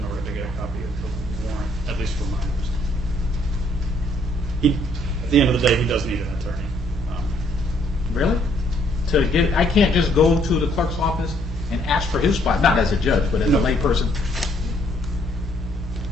order to get a copy of the warrant, at least for minors. At the end of the day, he does need an attorney. really? I can't just go to the clerk's office and ask for his spot, not as a judge, but as a layperson.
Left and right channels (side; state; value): both; normal; correlation 0.67